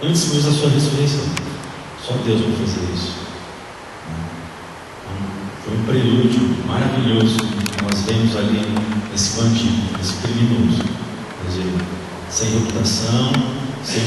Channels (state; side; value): identical; both; correlation 1.00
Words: antes mesmo da sua ressurreição. Só Deus pode fazer isso. Então, foi um prelúdio maravilhoso que nós vemos ali nesse bandido, nesse criminoso. Quer dizer, sem reputação, sem